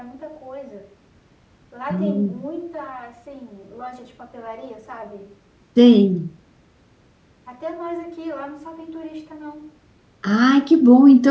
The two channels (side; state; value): both; identical; correlation 1.00